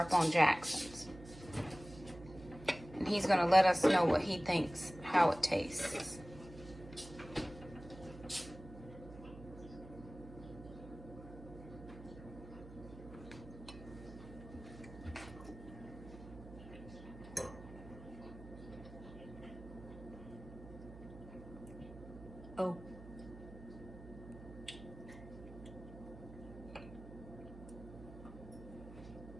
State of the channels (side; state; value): right; noise; hum, 15 dB below the sound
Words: on Jackson's. And he's going to let us know what he thinks, how it tastes. Oh.